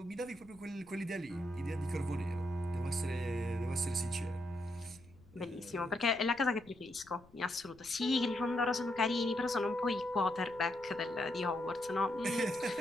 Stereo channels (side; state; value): left; noise; rumble, 25 dB below the sound